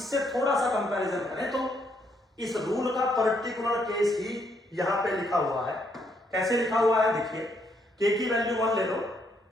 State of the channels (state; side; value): normal; both; correlation 0.73